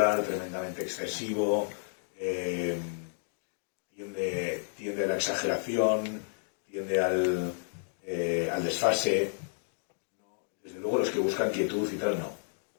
tremendamente excesivo. Tiende a la exageración, tiende al desfase. Desde luego los que buscan quietud y tal, no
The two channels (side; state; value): right; silent; digital silence